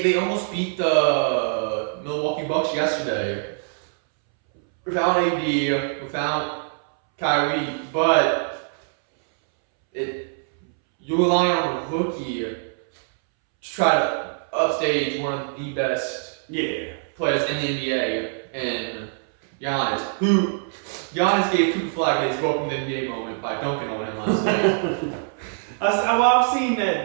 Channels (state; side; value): silent; left; 63 dB below the other